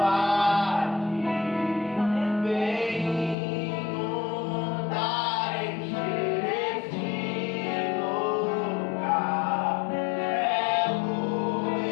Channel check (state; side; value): drops out; right; at 3.4 s